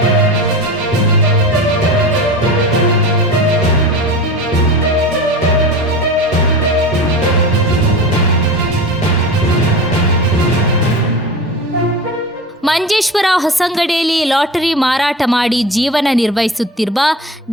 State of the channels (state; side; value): normal; both; correlation 0.31